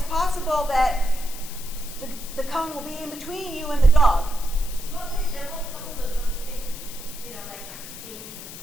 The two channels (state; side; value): noise; left; hiss, 13 dB below the sound